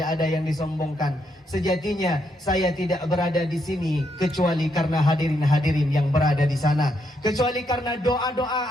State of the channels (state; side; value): normal; both; correlation 0.78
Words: ada yang disombongkan. Sejatinya saya tidak berada di sini kecuali karena hadirin-hadirin yang berada di sana, kecuali karena